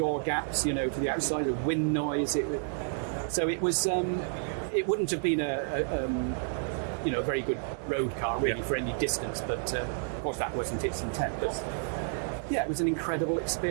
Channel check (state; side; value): silent; left; 58 dB below the other